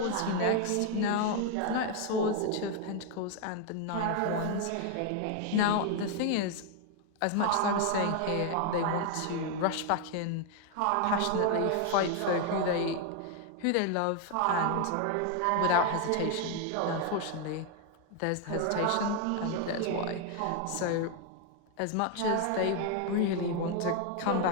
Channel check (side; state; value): both; different; correlation 0.00